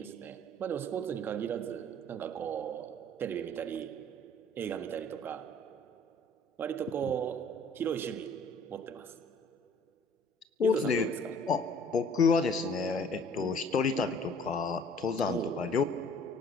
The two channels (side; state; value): both; normal; correlation 0.54